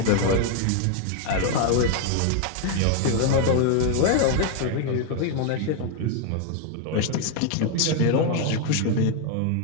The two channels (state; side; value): different; both; correlation 0.00